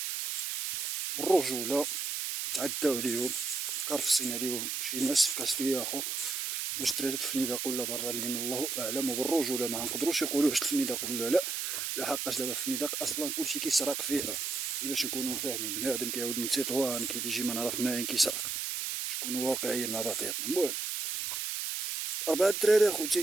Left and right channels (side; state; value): right; noise; hiss, 2 dB below the sound